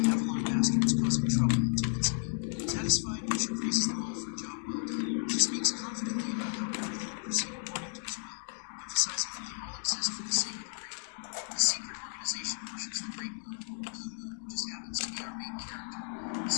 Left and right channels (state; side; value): silent; right; digital silence